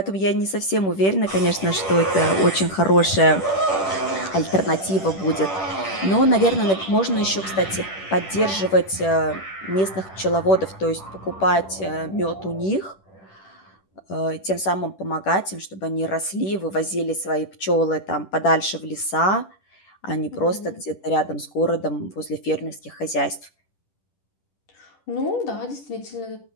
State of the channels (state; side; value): late; right; 10 ms